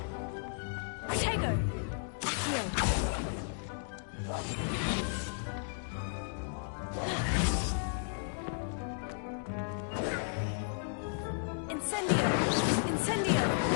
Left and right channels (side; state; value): right; silent; digital silence